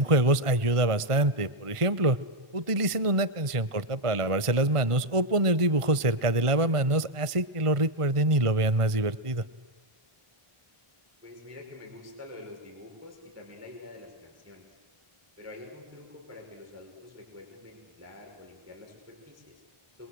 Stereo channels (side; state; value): left; late; 1.5 ms